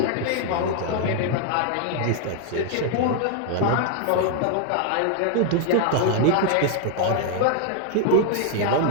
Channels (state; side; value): different; both; correlation 0.00